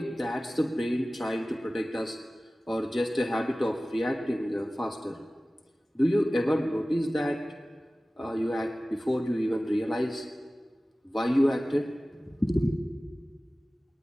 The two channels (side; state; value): both; normal; correlation 0.97